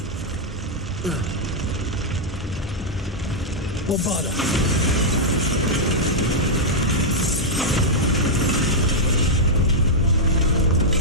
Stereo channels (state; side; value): normal; both; correlation -0.06